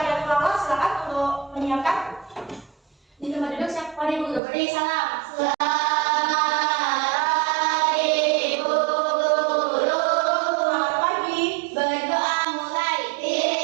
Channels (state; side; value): drops out; left; at 4.4 s